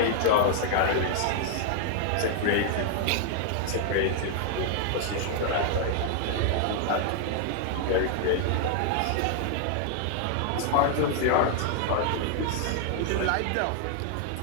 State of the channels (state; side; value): different; both; correlation 0.00